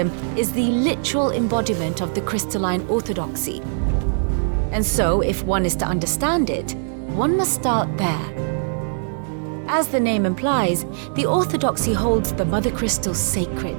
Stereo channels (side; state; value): left; silent; digital silence